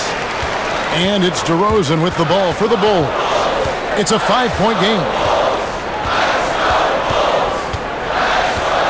And it's DeRozan with the ball for the Bulls. It's a 5-point game.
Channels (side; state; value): both; identical; correlation 1.00